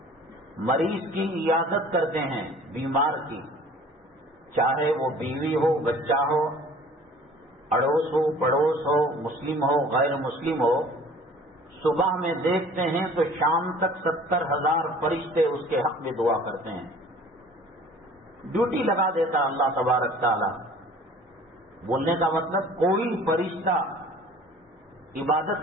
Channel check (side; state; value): both; normal; correlation 0.48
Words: مریض کی عیادت کرتے ہیں، بیمار کی، چاہے وہ بیوی ہو، بچہ ہو، اڑوس ہو، پڑوس ہو، مسلم ہو، غیر مسلم ہو، صبح میں دیکھتے ہیں تو شام تک 70,000 فرشتے اس کے حق میں دعا کرتے ہیں۔ ڈیوٹی لگا دیتا اللہ تبارک تعالی. بولنے کا مطلب کوئی فرشتہ